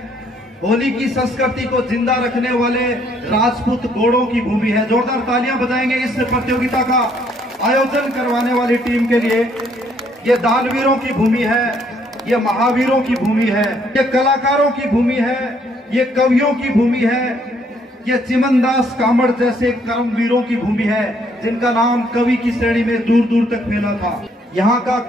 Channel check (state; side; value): normal; both; correlation 0.67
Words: होली की संस्कृति को जिंदा रखने वाले राजपूत घोड़ों की भूमि है। जोरदार तालियां बजाएंगे इस प्रतियोगिता का आयोजन करवाने वाली टीम के लिए। ये दानवीरों की भूमि है, ये महावीरों की भूमि है, ये कलाकारों की भूमि है, ये कवियों की भूमि है, ये चिमनदास कामड़ जैसे कर्मवीरों की भूमि है, जिनका नाम कवि की श्रेणी में दूर दूर तक फैला था। यहाँ का